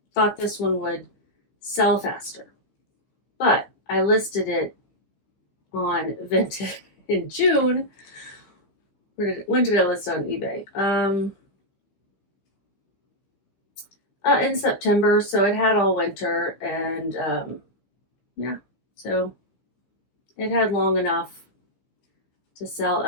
thought this one would sell faster, but I listed it on Vinted in June. When did I list on eBay? In September, so it had all winter, and yeah, so it had long enough to sell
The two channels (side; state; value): right; late; 15 ms